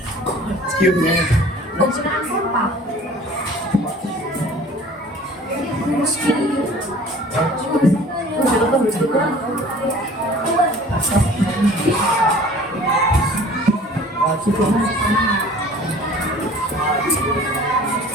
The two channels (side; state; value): both; normal; correlation 0.48